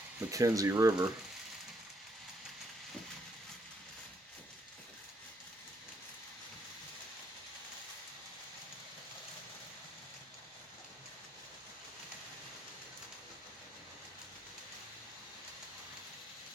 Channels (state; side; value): normal; both; correlation 0.73